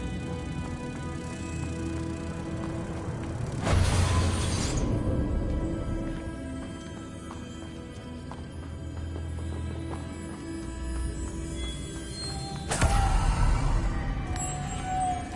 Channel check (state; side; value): identical; both; correlation 1.00